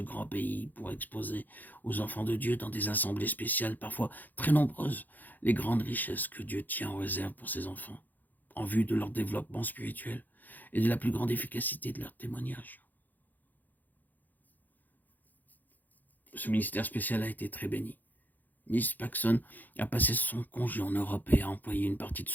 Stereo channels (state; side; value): late; right; 0.084 ms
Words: pays pour exposer aux enfants de Dieu dans des assemblées spéciales, parfois très nombreuses, les grandes richesses que Dieu tient en réserve pour ses enfants, en vue de leur développement spirituel et de la plus grande efficacité de leur témoignage. Ce ministère spécial a été très béni. Miss Paxson a passé son congé en Europe et a employé une partie de